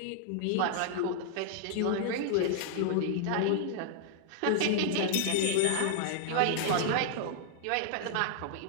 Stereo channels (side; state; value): both; different; correlation -0.01